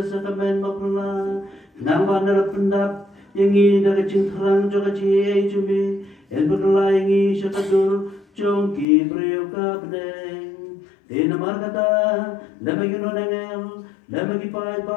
sakamen mapula kenang bandar pendap yang ini dari cintrang juga cie cumi, yang berlaingi syakadur jongki priuka bedeng. Di nama kata, lama yuno dengel, lama kipai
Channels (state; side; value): drops out; right; at 8.8 s